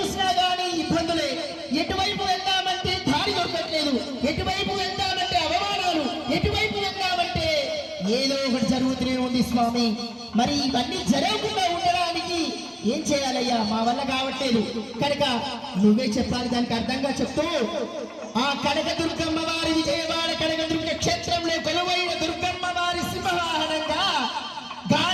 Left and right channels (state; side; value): identical; both; correlation 1.00